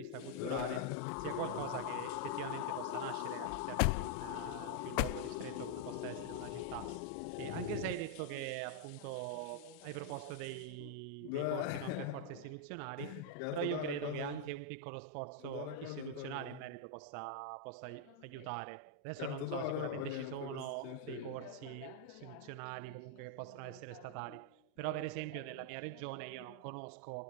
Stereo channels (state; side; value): different; both; correlation 0.00